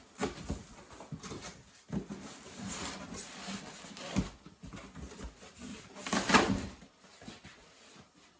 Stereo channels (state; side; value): identical; both; correlation 1.00